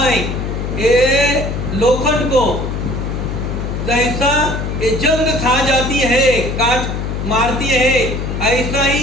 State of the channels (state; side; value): noise; left; hum, 3 dB below the sound